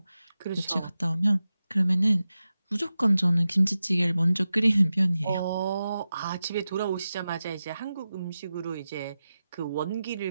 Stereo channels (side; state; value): both; inverted; correlation -0.93